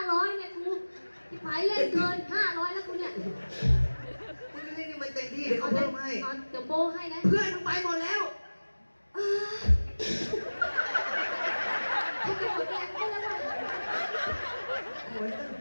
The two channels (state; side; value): inverted; both; correlation -1.00